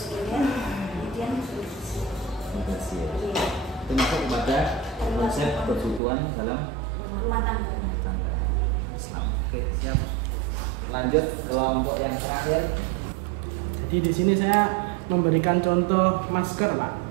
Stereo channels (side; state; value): left; drops out; at 6.0 s